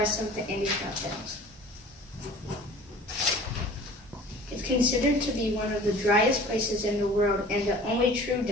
of the Andes Mountains. It's considered to be one of the driest places in the world and the only true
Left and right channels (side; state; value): both; normal; correlation 0.45